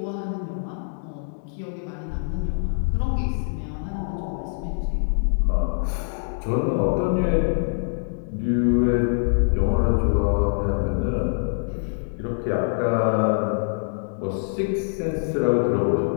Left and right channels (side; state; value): right; silent; digital silence